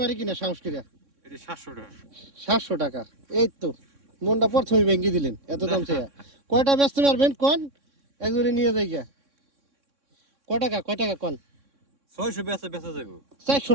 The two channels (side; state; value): left; late; 3.6 ms